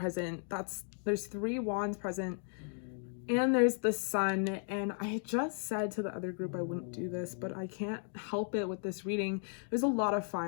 there's 3 wands present, and there's the Sun. And I just said to the other group I wouldn't do this, but I can't help it with this reading. There's a lot of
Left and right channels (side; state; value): right; silent; 54 dB below the other